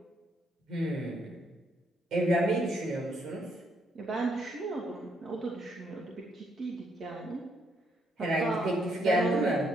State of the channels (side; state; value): both; normal; correlation 0.73